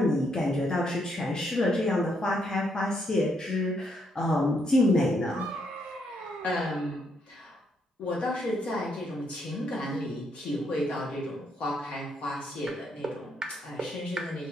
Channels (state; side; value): normal; both; correlation 0.75